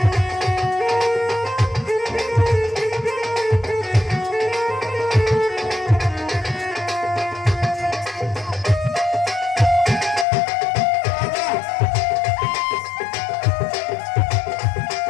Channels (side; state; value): right; drops out; at 10.2 s